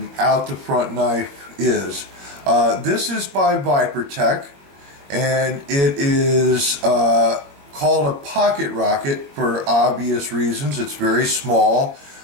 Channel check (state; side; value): late; left; 21 ms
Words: the front knife is. This is by Vipertech, and it is called a pocket rocket for obvious reasons. It's very small.